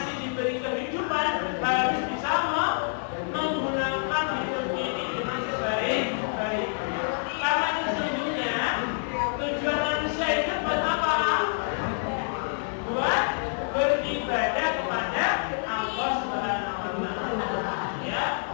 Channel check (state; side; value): silent; right; 60 dB below the other